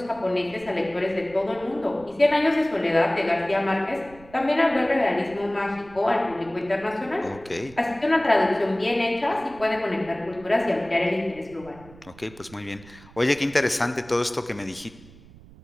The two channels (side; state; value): right; noise; rumble, 22 dB below the sound